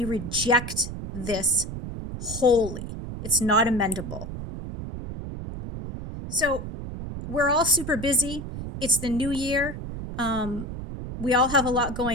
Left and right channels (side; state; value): right; noise; rumble, 8 dB below the sound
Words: this wholly. It's not amendable. So we're all super busy. It's the new year. We all have a lot